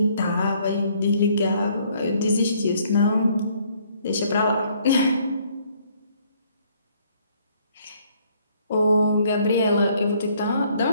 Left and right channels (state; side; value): inverted; both; correlation -0.64